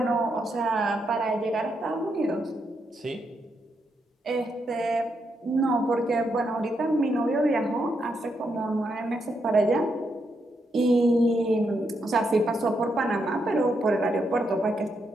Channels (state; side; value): normal; both; correlation 0.81